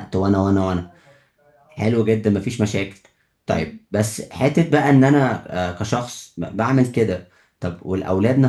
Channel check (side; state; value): both; identical; correlation 1.00